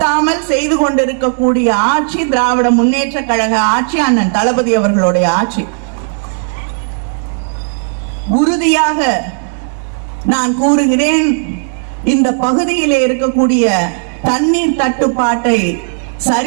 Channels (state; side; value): silent; left; 66 dB below the other